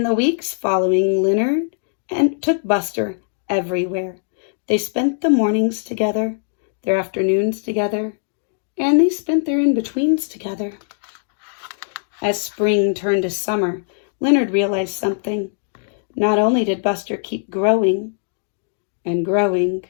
the weeks following, Leonard took Buster everywhere. They spent the mornings together, their afternoons together, and they spent their in-betweens together. As spring turned to summer, Leonard realized something. Not only did Buster keep growing and growing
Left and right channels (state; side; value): silent; right; digital silence